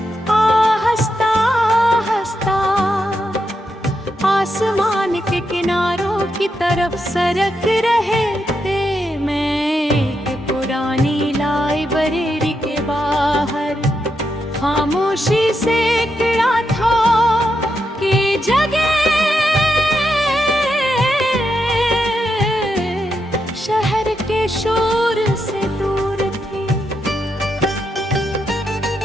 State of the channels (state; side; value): normal; both; correlation 0.83